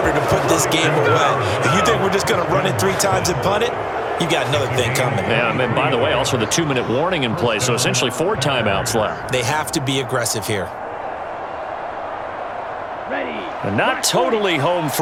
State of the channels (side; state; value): both; identical; correlation 1.00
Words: to put this game away. If you think we're just going to run it 3 times and punt it, you got another thing coming. Yeah, and by the way, also the 2-minute warning in play, so essentially 4 timeouts left. They have to be aggressive here. Ready. And not totally home